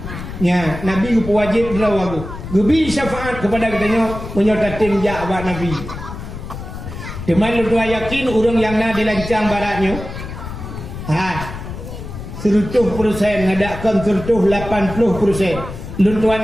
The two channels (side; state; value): left; noise; rumble, 9 dB below the sound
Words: Ya, Nabi ku wajib lawagu. Gubi syafaat kepada katanya menyotatin ja abad Nabi. Deman lu yakin urang yang na dilancang baratnya. 100% ngadakan 80%. Lun tuan